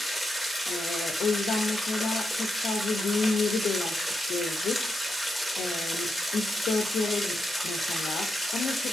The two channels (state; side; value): normal; both; correlation 0.85